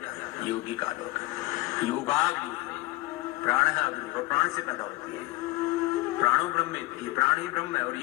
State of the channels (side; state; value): right; quieter; 20.0 dB